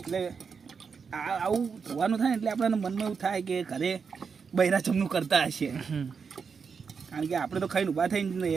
એટલે આવું ધોવાનું થાય ને એટલે આપણને મનમાં એવું થાય કે ઘરે બૈરા જમનું કરતા હશે. કારણ કે આપણે તો ખાઈને ઊભા થઈને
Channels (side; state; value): left; quieter; 5.8 dB